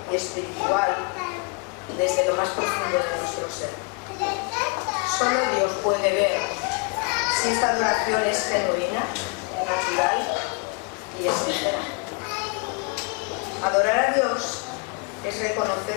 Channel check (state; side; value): quieter; right; 32.3 dB